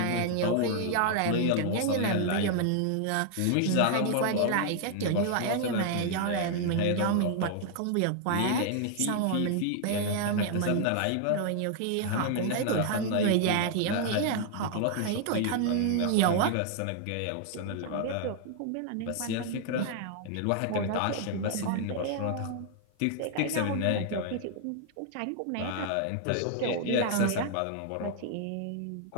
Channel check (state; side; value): different; both; correlation 0.00